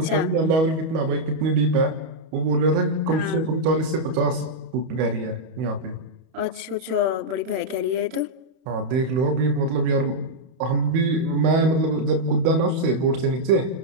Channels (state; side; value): late; left; 31 ms